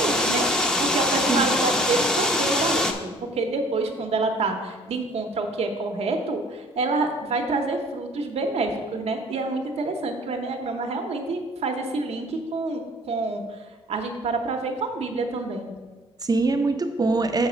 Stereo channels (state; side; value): normal; both; correlation 0.53